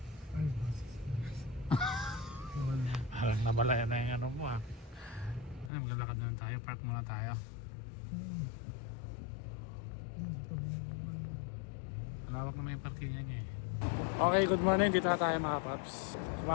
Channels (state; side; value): drops out; right; at 5.7 s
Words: Ay, basis. Parang namalayan na yung ano mo ah. Ay, maglalakad na lang tayo. Park muna tayo. Malawak naman yung parking niya eh. Okay, good morning. Dito na tayo mga paps.